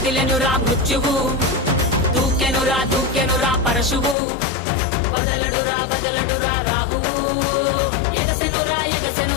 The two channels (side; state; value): right; drops out; at 4.2 s